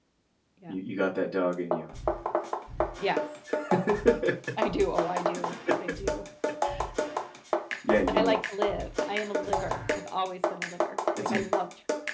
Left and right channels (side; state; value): both; identical; correlation 1.00